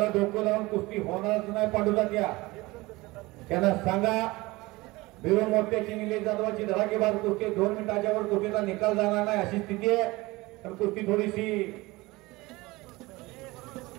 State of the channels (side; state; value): left; quieter; 21.5 dB